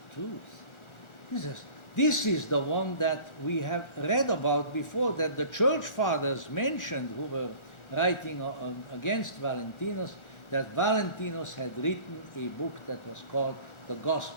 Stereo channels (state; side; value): late; right; 1.4 ms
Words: Truth. He says, this is the one that we have read about before, that the church fathers mentioned, who were writing against Valentinus, that Valentinus had written a book that was called the